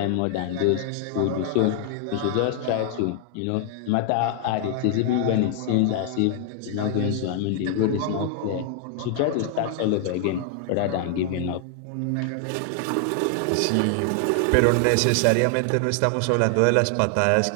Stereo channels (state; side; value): different; both; correlation 0.00